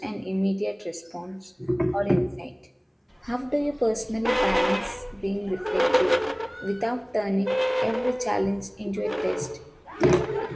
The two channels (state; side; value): identical; both; correlation 1.00